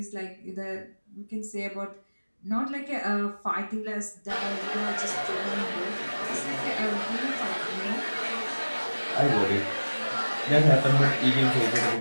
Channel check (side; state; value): both; inverted; correlation -1.00